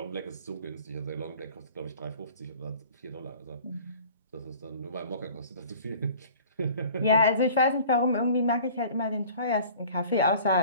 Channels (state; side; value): inverted; both; correlation -0.47